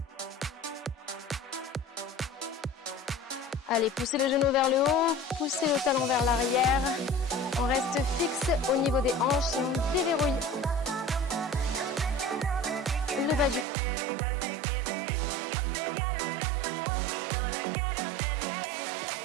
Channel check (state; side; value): drops out; left; at 13.7 s